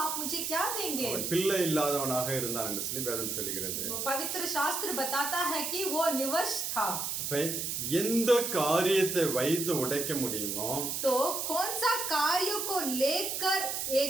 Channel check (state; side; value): noise; right; hiss, 2 dB below the sound